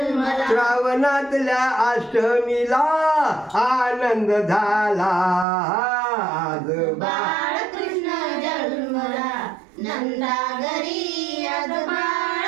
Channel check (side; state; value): left; drops out; at 5.5 s